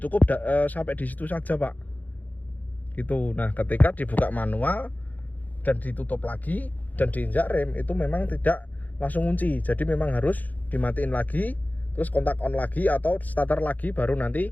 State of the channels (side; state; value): right; late; 0.081 ms